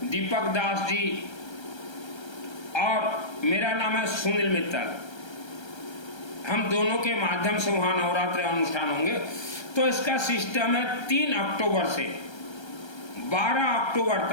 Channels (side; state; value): right; late; 1.3 ms